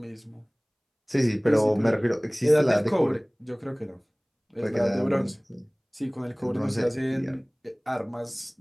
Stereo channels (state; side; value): identical; both; correlation 1.00